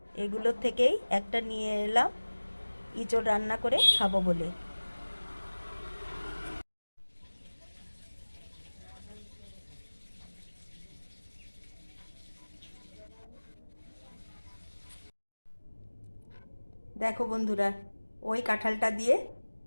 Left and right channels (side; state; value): both; inverted; correlation -1.00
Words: এগুলোর থেকেই একটা নিয়ে এলাম ইঁচড় রান্না করে খাবো বলে। দেখো বন্ধুরা, ওই কাঁঠালটা দিয়ে